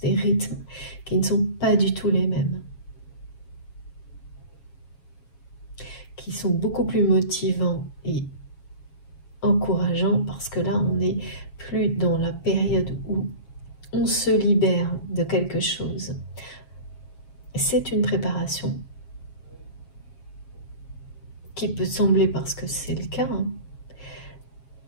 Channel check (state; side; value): late; right; 7.3 ms